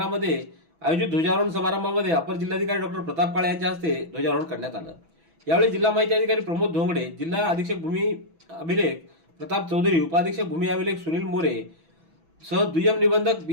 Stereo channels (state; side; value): late; left; 6.1 ms